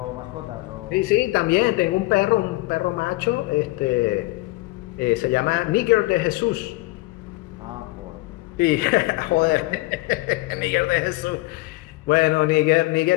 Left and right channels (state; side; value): quieter; right; 20.7 dB